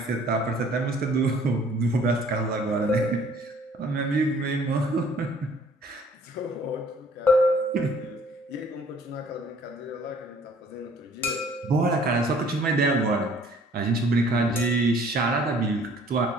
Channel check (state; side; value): normal; both; correlation 0.56